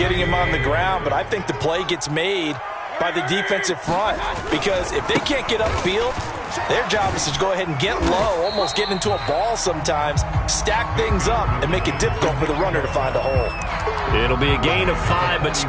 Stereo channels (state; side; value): identical; both; correlation 1.00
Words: him on the ground, but I think the play gets made by the defensive front, because if they can't get upfield, their job is to go ahead and get low, almost get into a ball sometimes, stack things up, and make it difficult for the runner to find a hole. It'll be a gain of 5, but